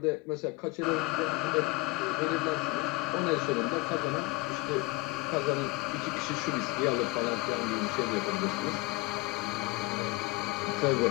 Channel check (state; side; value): quieter; right; 23.1 dB